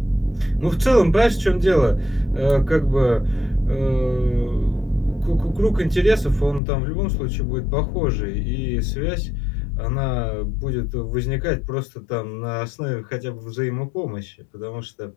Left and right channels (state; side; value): drops out; right; at 6.6 s